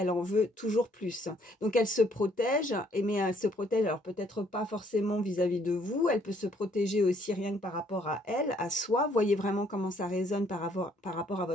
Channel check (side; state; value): both; normal; correlation 0.65